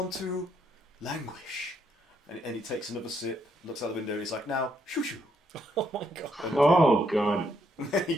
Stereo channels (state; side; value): normal; both; correlation 0.74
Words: to languish. And he takes another sip, looks out the window, and he's like, now, shoo shoo. Oh my god. Oh god. And then he